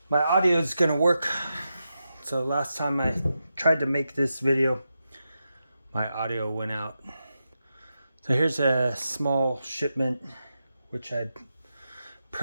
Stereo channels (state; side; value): inverted; both; correlation -0.88